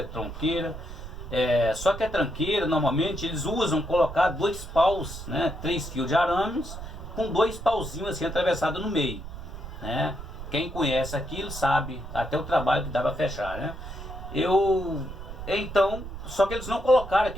tronqueira. Só que a tranqueira, normalmente, eles usam colocar 2 paus, né, 3 fios de arames, com 2 pauzinhos assim atravessados no meio, né? Quem conhece aquilo sabe até o trabalho que dá para fechar, né? Então, só que eles não colocaram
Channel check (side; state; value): right; noise; rumble, 10 dB below the sound